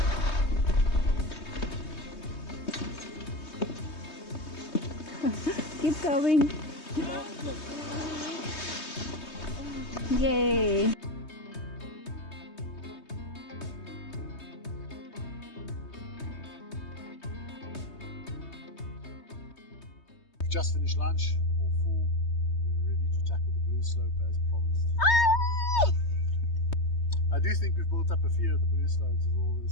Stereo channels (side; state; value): right; late; 3.2 ms